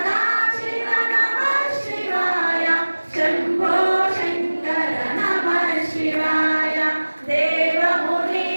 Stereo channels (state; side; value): inverted; both; correlation -1.00